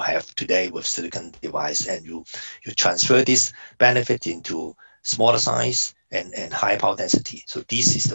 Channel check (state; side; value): inverted; both; correlation -1.00